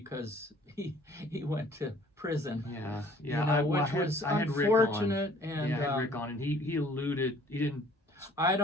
he went to prison. Yeah, yeah. You know, which was unfortunate. And I had Rick on, and he alluded. He didn't. I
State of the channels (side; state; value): both; normal; correlation 0.55